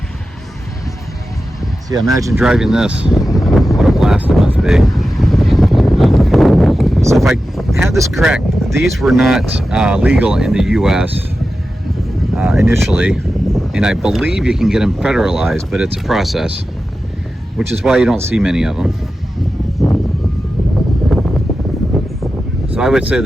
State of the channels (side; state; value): both; normal; correlation 0.92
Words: So yeah, imagine driving this. What a blast it must be. So if I have this correct, these were not legal in the US initially, and I believe you can get them federalized, but it's a process, which is why you don't see many of them. So I would say